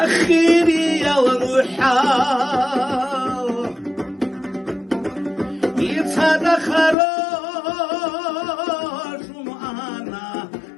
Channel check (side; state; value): right; drops out; at 7.0 s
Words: يا روحا يتصدى خروج